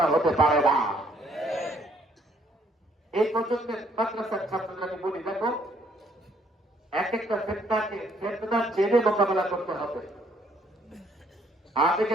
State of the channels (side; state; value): both; normal; correlation 0.66